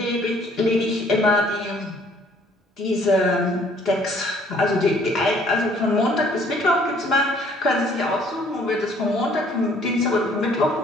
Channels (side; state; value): both; normal; correlation 0.59